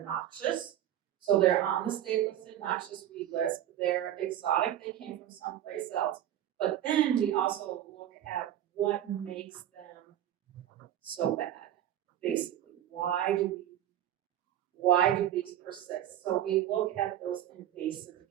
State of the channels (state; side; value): quieter; left; 11.6 dB